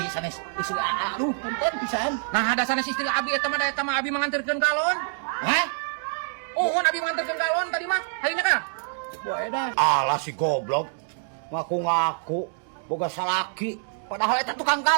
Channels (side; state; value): left; silent; 61 dB below the other